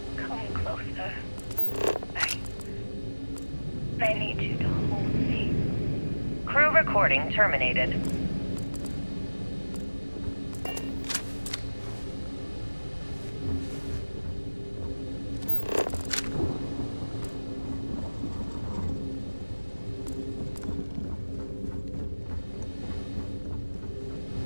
Come closer. I need you to hold me. Crew recording terminated.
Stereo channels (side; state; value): both; inverted; correlation -1.00